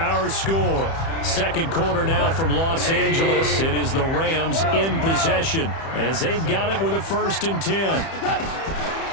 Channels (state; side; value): late; right; 30 ms